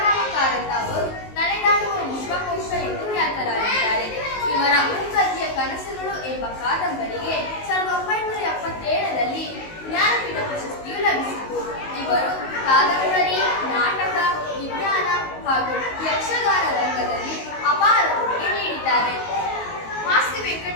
ಕಾರಂತ ಅವರು ನಡೆದಾಡುವ ವಿಶ್ವಕೋಶ ಎಂದು ಖ್ಯಾತರಾಗಿದ್ದಾರೆ. ಇವರ ಮೂಕತಿಯ ಕನಸುಗಳು ಎಂಬ ಕಾದಂಬರಿಗೆ 1977ರಲ್ಲಿ ಜ್ಞಾನಪೀಠ ಪ್ರಶಸ್ತಿಯು ಲಭಿಸಿತು. ಇವರು ಕಾದಂಬರಿ, ನಾಟಕ, ವಿಜ್ಞಾನ ಹಾಗೂ ಯಕ್ಷಗಾನ ರಂಗದಲ್ಲಿ ಅಪಾರ ಕೊಡುಗೆ ನೀಡಿದ್ದಾರೆ. ಮಾಸ್ತಿ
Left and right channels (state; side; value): late; right; 19 ms